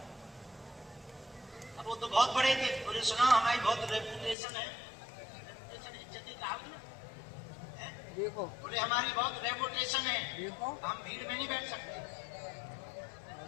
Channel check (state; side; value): drops out; right; at 4.4 s